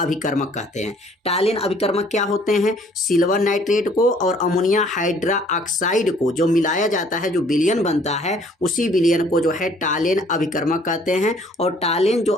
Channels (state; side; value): normal; both; correlation 0.59